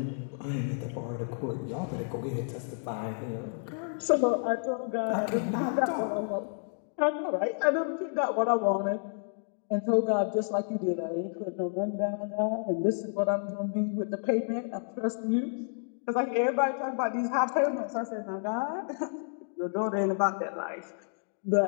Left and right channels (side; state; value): right; silent; digital silence